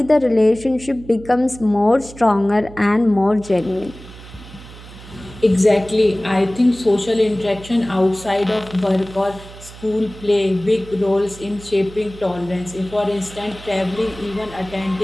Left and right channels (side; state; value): right; noise; hum, 17 dB below the sound